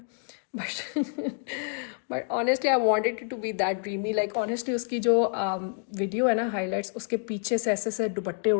But honestly I wanted to be that dreamy. Like honestly उसकी जो वीडियो है ना हाईलाइट्स, उसके पीछे से ऐसे ऐसे दुपट्टे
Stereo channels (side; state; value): right; silent; 59 dB below the other